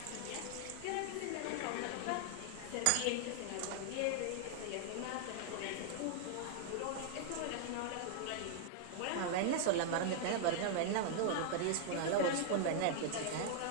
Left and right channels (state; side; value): different; both; correlation -0.01